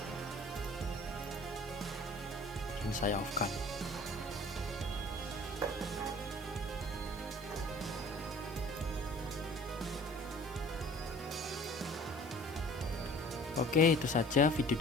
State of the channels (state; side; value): noise; left; hiss, 22 dB below the sound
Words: Saya off-kan. Oke, itu saja video